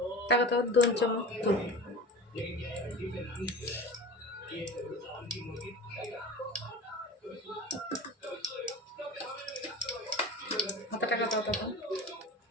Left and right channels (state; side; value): normal; both; correlation 0.34